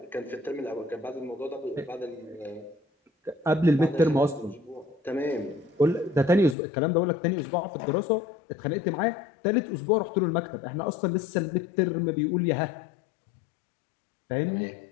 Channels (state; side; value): drops out; right; at 6.6 s